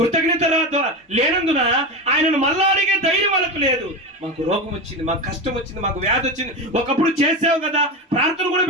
లేనందున ఆయనను మళ్ళా అడిగే ధైర్యం వాళ్ళకు లేదు. మాకు రోగం వచ్చింది, మాకు కష్టం వచ్చింది, మాకు వ్యాధి వచ్చింది, ఒకప్పుడు చేసావు కదా, ప్రార్థన కూడా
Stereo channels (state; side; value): normal; both; correlation 0.20